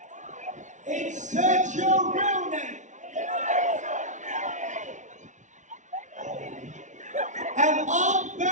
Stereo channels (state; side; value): late; left; 0.36 ms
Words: Insert your real name. And on